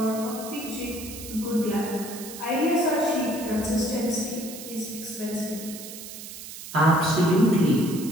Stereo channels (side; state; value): right; noise; hiss, 12 dB below the sound